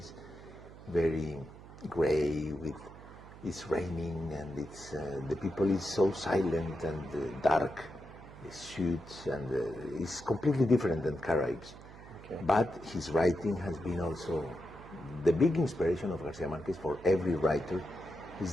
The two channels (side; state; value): right; noise; hum, 17 dB below the sound